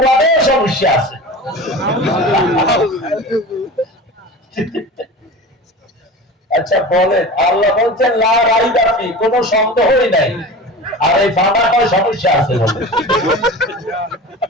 সমস্যা আছে। আচ্ছা বলেন, আল্লাহ বলছেন লা রাইবা ফি, কোনো সন্দেহই নাই, আর এই বাবা কয় সমস্যা আছে বলে।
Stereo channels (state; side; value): normal; both; correlation 0.34